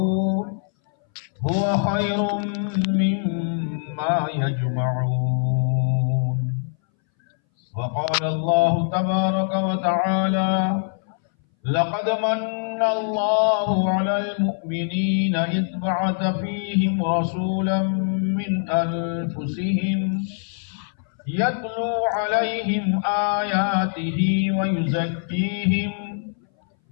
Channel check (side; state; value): right; silent; 61 dB below the other